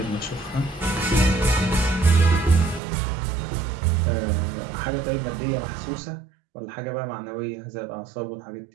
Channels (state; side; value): drops out; left; at 2.8 s